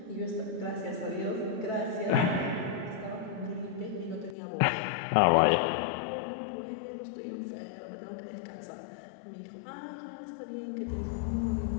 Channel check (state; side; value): drops out; right; at 4.4 s